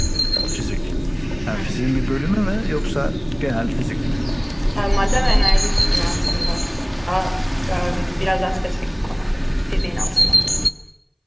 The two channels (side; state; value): both; identical; correlation 1.00